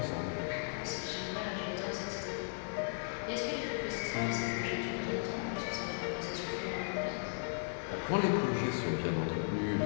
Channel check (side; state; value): right; silent; digital silence